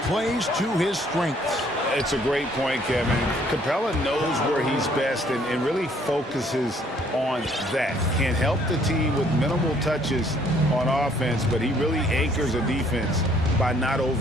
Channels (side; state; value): both; normal; correlation 0.62